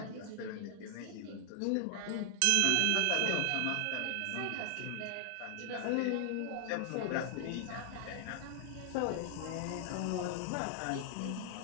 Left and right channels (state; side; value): different; both; correlation 0.00